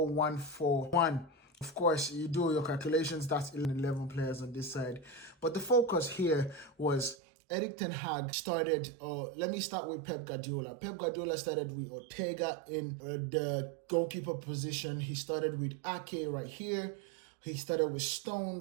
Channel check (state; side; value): drops out; left; at 7.2 s